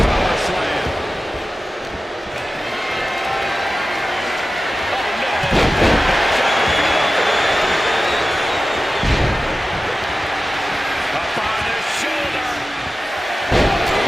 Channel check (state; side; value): normal; both; correlation 0.94